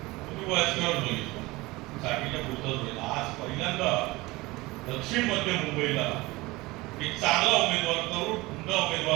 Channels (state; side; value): quieter; left; 21.4 dB